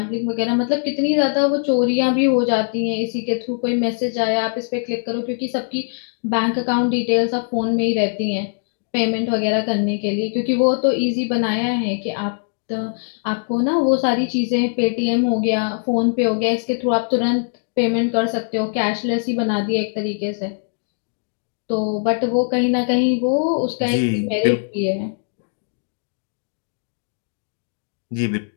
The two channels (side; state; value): right; silent; 62 dB below the other